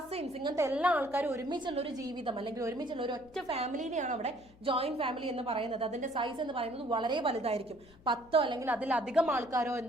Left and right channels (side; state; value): left; noise; hum, 25 dB below the sound